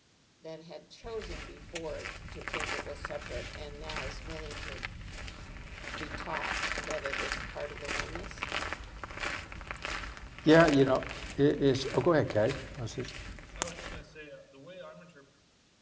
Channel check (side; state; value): both; identical; correlation 1.00